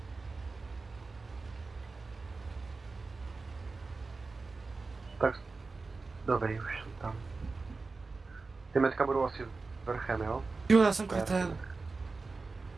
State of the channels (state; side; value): quieter; left; 4.0 dB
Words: Tak, dobrý, už jsem tam. Ty metka budou asi vrchem, jo? Jo, já jsem kretén.